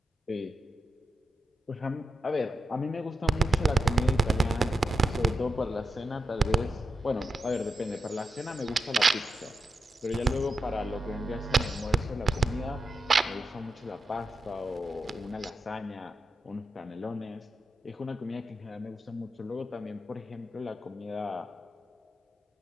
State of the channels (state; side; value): normal; both; correlation 0.88